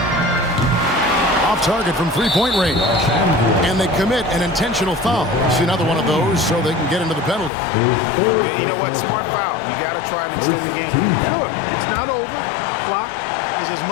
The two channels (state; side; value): drops out; right; at 7.5 s